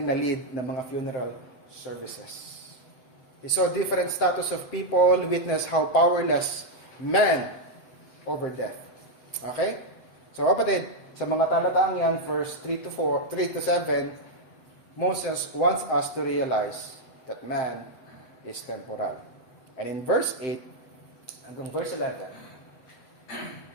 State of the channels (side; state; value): right; late; 7.7 ms